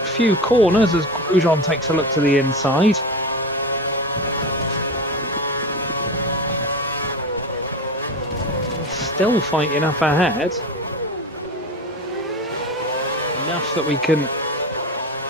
few corners as Grosjean takes a look to the inside. Still fighting up ahead. Enough that we can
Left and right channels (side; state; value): both; normal; correlation 0.26